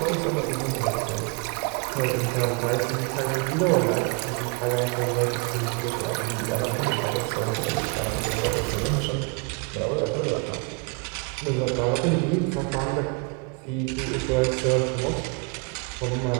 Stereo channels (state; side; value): quieter; left; 32.5 dB